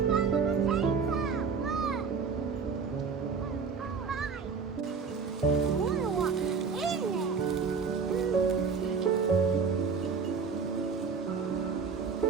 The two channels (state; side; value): quieter; left; 5.5 dB